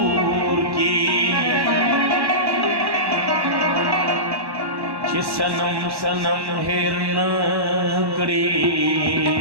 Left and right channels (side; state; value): left; late; 1.1 ms